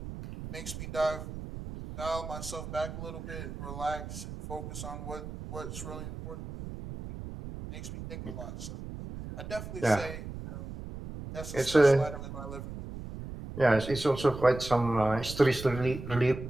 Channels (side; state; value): right; noise; rumble, 9 dB below the sound